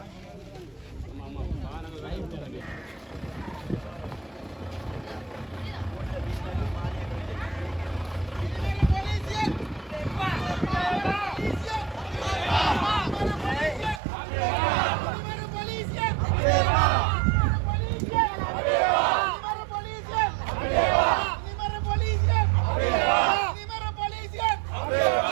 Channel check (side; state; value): left; drops out; at 14.0 s